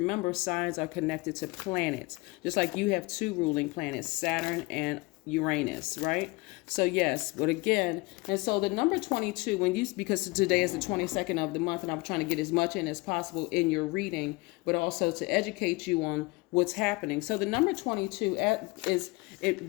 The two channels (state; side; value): quieter; right; 24.3 dB